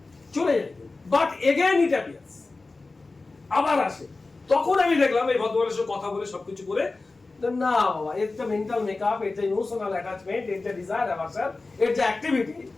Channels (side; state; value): right; quieter; 3.5 dB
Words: যায়, বাট এগেইন ইট অ্যাপিয়ার্স, আবার আসে। তখন আমি দেখলাম এই ভদ্রমানের সাথে কথা বলে সবকিছু করে, না বাবা, এর যে মেন্টাল মেকআপ, এর যে ইমোশনাল অ্যাটাচমেন্ট, এর যে ডিজায়ার অ্যাভারশন, এর যে activity